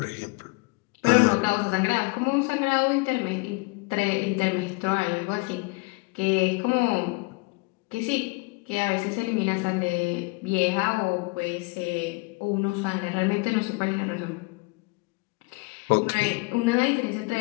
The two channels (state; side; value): quieter; right; 27.1 dB